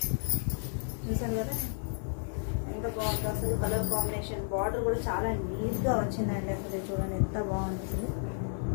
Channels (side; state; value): right; silent; 56 dB below the other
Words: చూసారు కదా ఎంత బాగుంది అసలు కలర్ కాంబినేషన్. బార్డర్ కూడా చాలా నీట్గా వచ్చిందండి. అసలు చూడండి ఎంత బాగుంది అసలు.